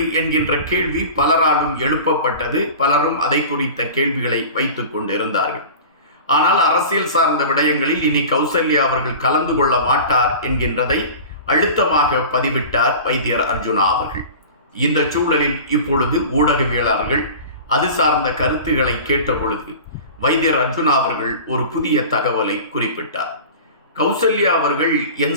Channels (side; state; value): both; inverted; correlation -0.36